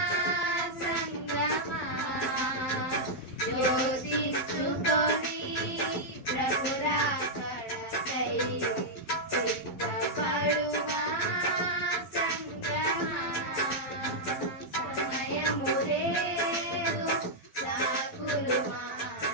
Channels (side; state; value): right; late; 12 ms